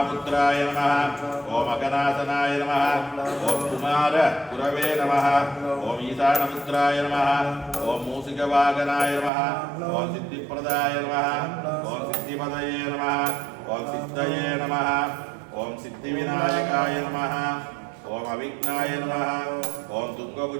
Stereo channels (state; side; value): drops out; left; at 9.3 s